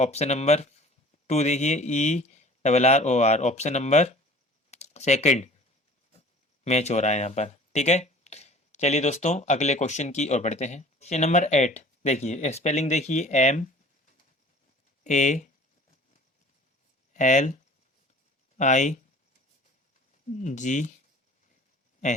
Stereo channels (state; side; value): normal; both; correlation 0.47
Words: नंबर टू देखिए, E double R O R. Option number second match हो रहा है यहाँ पर। ठीक है, चलिए दोस्तों अगले क्वेश्चन की ओर बढ़ते हैं। क्वेश्चन नंबर 8 देखिए, स्पेलिंग देखिए, MALIGN।